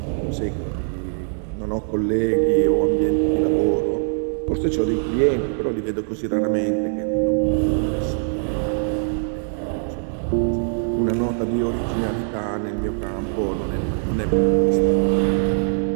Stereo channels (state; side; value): silent; left; digital silence